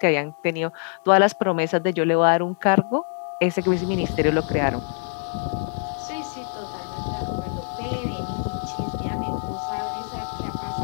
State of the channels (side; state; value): right; silent; 62 dB below the other